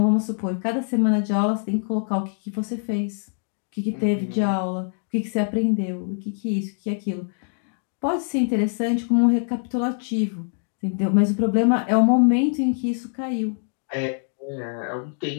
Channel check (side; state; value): right; silent; 60 dB below the other